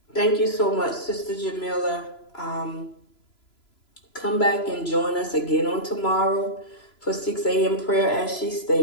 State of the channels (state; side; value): late; right; 3.0 ms